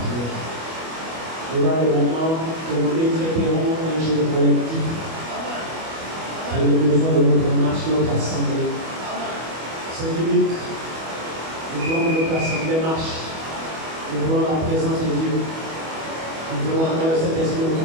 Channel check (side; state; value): left; late; 25 ms